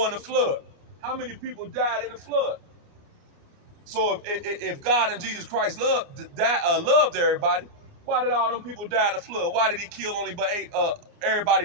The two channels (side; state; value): left; late; 29 ms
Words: and the flood. How many people died in the flood? So if God and Jesus Christ loved everybody, why did all them people die in the flood? Why did he kill everybody